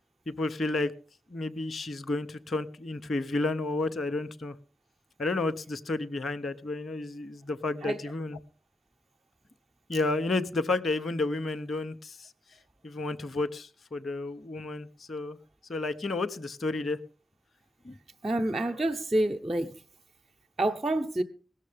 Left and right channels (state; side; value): normal; both; correlation 0.78